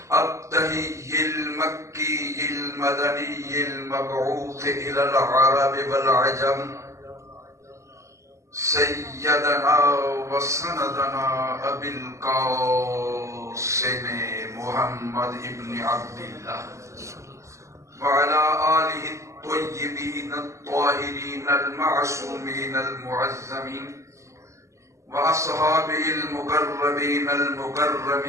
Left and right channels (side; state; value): left; late; 0.14 ms